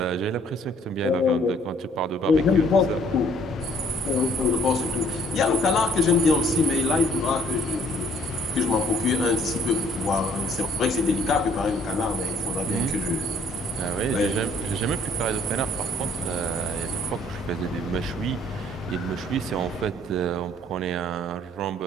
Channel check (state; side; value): normal; both; correlation 0.61